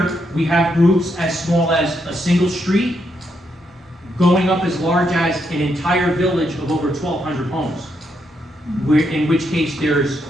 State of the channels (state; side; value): normal; both; correlation 0.79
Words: we have groups as small as a single street, going up as large as an entire village of over 1,200 homes, where, in which case there's